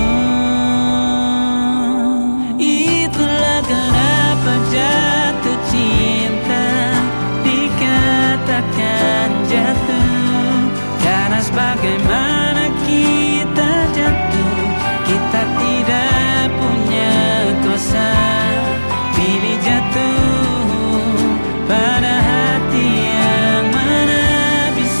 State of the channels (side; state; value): both; inverted; correlation -1.00